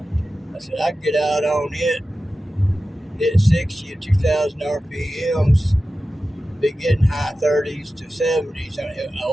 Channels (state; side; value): normal; both; correlation 0.94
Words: I said, I can get out on it, hit 60 at 2,000 RPMs, be getting high 30s to 70s.